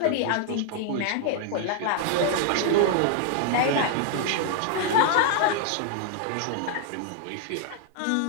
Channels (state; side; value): different; both; correlation 0.00